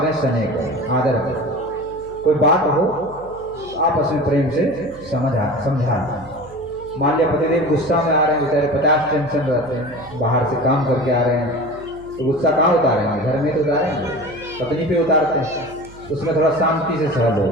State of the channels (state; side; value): noise; right; hum, 20 dB below the sound